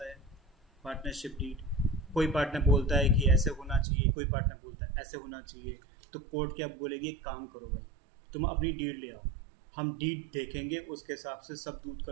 है पार्टनरशिप डीड। कोई पार्टनर बोलता है कि ऐसे होना चाहिए, कोई पार्टनर बोलता है ऐसे होना चाहिए, तो कोर्ट क्या बोलेगी, एक काम करो भाई, तुम अपनी डीड ले आओ, हम डीड देखेंगे, उसके हिसाब से सब दूध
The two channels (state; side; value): drops out; left; at 3.9 s